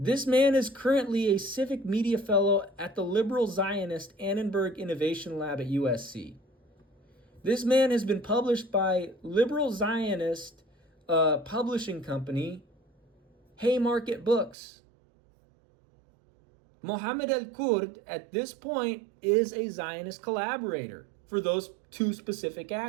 man is currently a civic media fellow at the liberal Zionist Annenberg Innovation Lab at USC. This man has been published by liberal Zionist publishing company Haymarket Books. Mohammed El-Kurd, at this point, is a Zionist collaborator for those two specific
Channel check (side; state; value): left; drops out; at 14.6 s